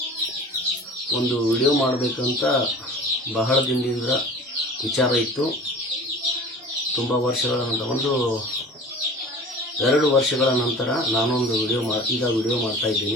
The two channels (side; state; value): both; normal; correlation 0.41